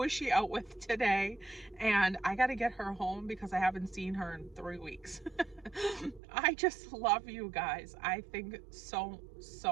is she out with today? And I got to get her home because I haven't seen her in 3 weeks. I just love you guys. I think so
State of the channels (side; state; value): left; drops out; at 6.2 s